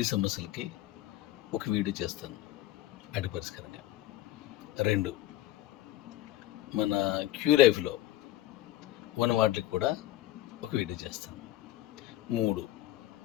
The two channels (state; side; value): quieter; right; 15.0 dB